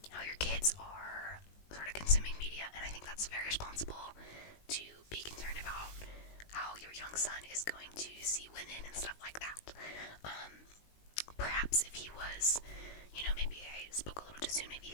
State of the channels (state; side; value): late; right; 19 ms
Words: how your kids are sort of consuming media, and I think that's very responsible to be concerned about how your young son is going to see women and stuff like that. Perhaps if he was, maybe I spoke a little too soon, maybe